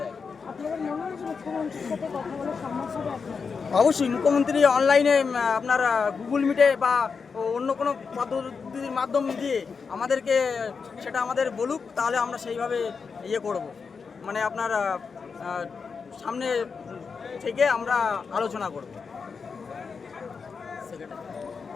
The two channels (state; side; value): quieter; right; 5.4 dB